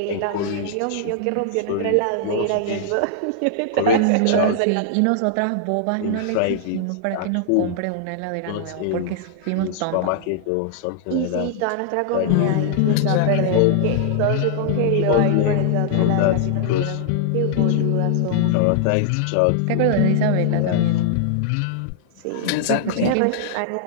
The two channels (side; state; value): both; different; correlation -0.01